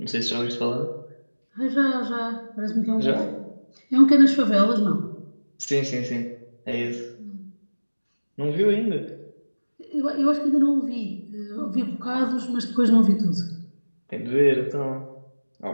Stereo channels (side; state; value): both; inverted; correlation -1.00